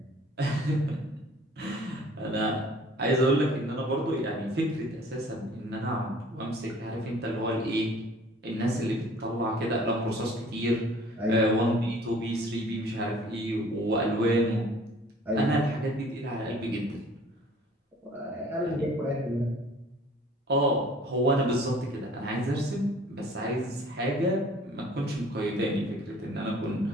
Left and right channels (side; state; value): both; normal; correlation 0.52